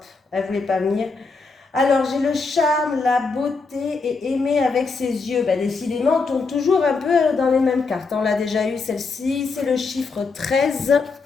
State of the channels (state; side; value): quieter; right; 4.3 dB